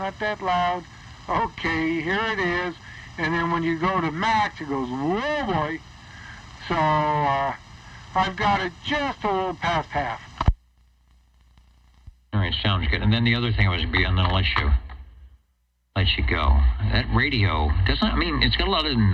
that loud. Okay, here it is. And then when you go to max, it goes, whoa boy. So I've got it just a little past half. All right, sounds good. And then the other thing was, and then I'll let you go. That radio doesn't. I mean, it's got a lot of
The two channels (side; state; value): both; identical; correlation 1.00